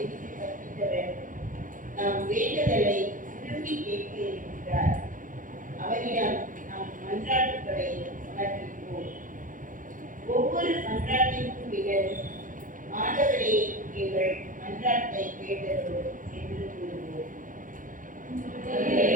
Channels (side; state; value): left; late; 0.38 ms